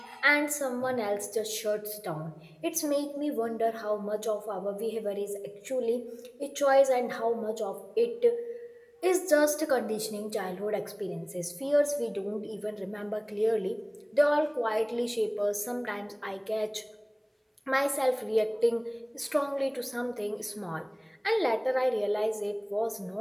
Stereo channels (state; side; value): identical; both; correlation 1.00